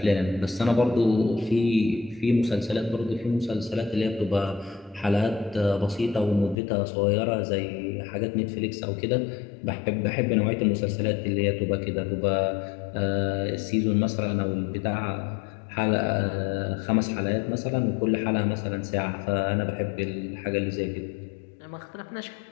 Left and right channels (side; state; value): right; drops out; at 6.6 s